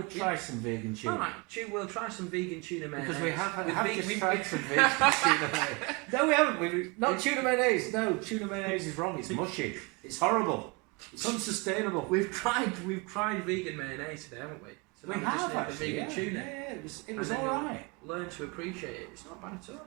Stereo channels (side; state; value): left; quieter; 28.6 dB